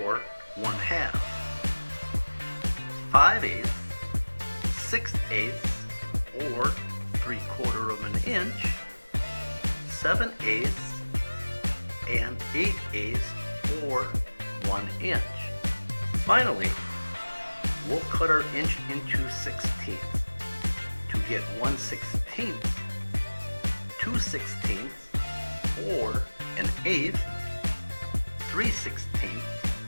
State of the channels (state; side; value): inverted; both; correlation -1.00